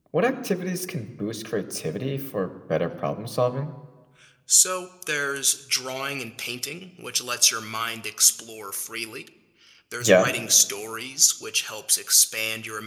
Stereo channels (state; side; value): identical; both; correlation 1.00